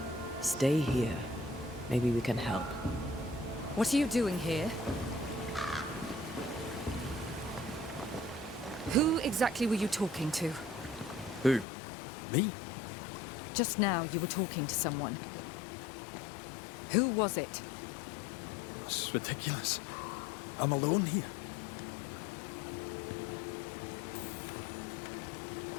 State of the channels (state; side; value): drops out; right; at 11.7 s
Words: Stay here. Maybe we can help. What are you doing here? Who exactly were you talking to? Who? Me? Just now you were talking to someone. Who was it? It's ridiculous. I'm alone here.